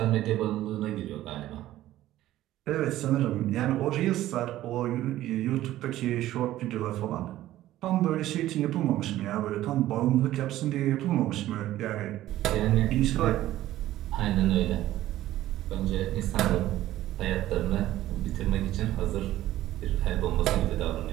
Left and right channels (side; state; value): left; quieter; 14.4 dB